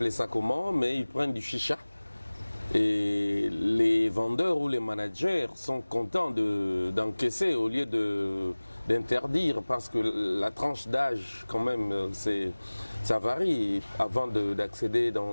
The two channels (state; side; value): inverted; both; correlation -1.00